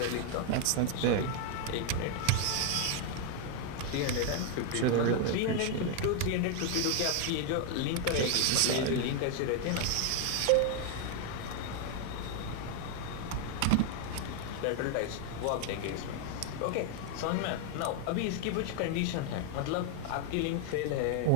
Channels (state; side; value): different; both; correlation 0.00